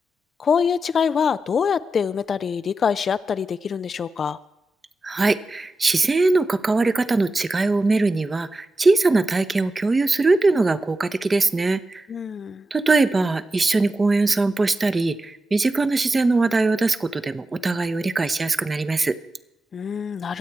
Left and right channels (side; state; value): both; normal; correlation 0.91